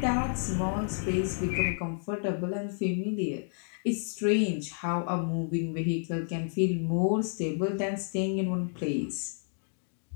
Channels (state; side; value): silent; right; digital silence